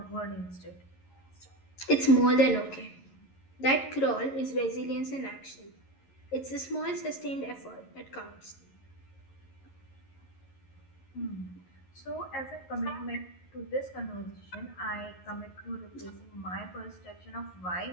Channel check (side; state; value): right; late; 11 ms